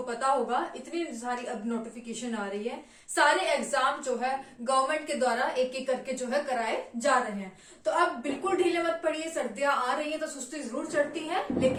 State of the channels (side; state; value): both; identical; correlation 1.00